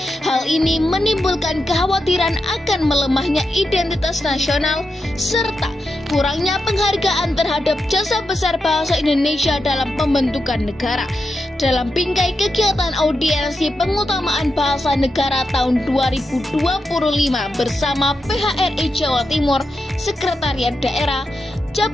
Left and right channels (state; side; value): normal; both; correlation 0.87